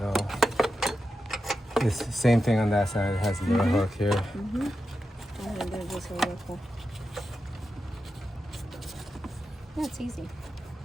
it's the same thing on that side. It has a little hook here. Mm-hmm. And then there's this hueco. Yeah, it's easy.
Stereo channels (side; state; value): both; normal; correlation 0.89